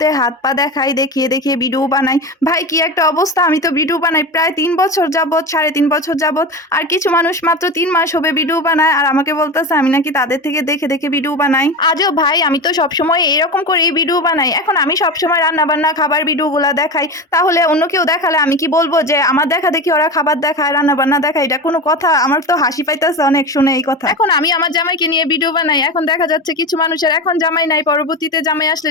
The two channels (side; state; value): both; normal; correlation 0.24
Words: হাত পা দেখাই, দেখিয়ে দেখিয়ে ভিডিও বানাই। ভাই কি একটা অবস্থা, আমি তো ভিডিও বানাই প্রায় 3 বছর যাবত, 3.5 বছর যাবত। আর কিছু মানুষ মাত্র 3 মাস হবে ভিডিও বানায়, আর আমাকে বলতেছে আমি নাকি তাদের থেকে দেখে দেখে ভিডিও বানাই। আজও ভাই আমি তো সবসময় এরকম করেই ভিডিও বানাই। এখন আমি সবসময় রান্না বান্না খাবার ভিডিওগুলো দেখাই, তাহলে অন্য কেউ দেখালে আমি কি বলবো যে আমার দেখা দেখি ওরা খাবার দেখায়, রান্না বান্না দেখায়? এটা কোনো কথা? আমার তো হাসি পাইতেছে অনেক শুনে এই কথা। এখন আমি আমার জামাইকে নিয়ে ভিডিও বানাই, এখন দেখা যাচ্ছে কিছু মানুষের এখন জামাই নাই, পরবর্তীতে জামাই আসলে